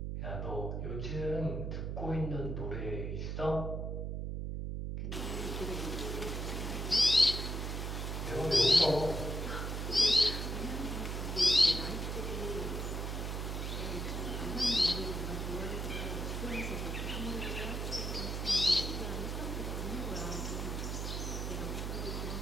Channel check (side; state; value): right; noise; hum, 3 dB below the sound